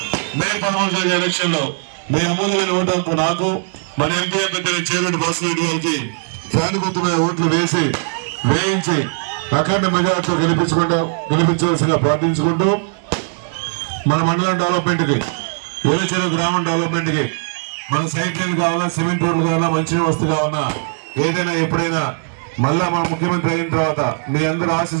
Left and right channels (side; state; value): left; silent; 67 dB below the other